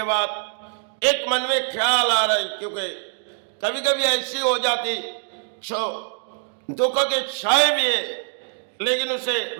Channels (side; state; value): left; silent; digital silence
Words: बाद एक मन में ख्याल आ रहा है, क्योंकि कभी कभी ऐसी हो जाती जो दुख के छाए भी है लेकिन उसे